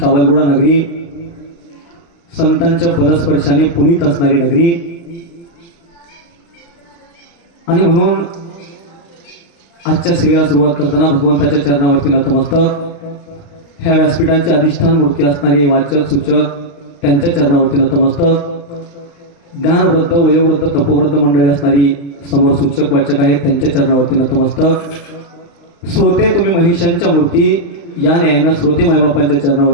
नगरी, संतांच्या पदस्पर्शाने पुनीत असणारी नगरी आणि म्हणून आजच्या सेवेला सुरुवात करताना भगवंताच्या चरणावरती नतमस्तक, ह्या व्यासपीठाचे अधिष्ठान मूर्ती असणारे वाचक सूचक त्यांच्या चरणावरती नतमस्तक, ज्ञानवृद्ध वयोवृद्ध तपोवृद्ध मंडळी असणारी समोर सूचक वाचक आहेत त्यांच्या चरणावरती नतमस्तक, श्रोते तुम्ही महिषांच्या मूर्ती या न्यायानं श्रोते मायबापांच्या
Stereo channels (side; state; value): right; late; 35 ms